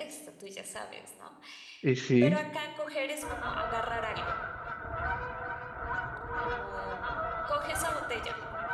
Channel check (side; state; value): both; identical; correlation 1.00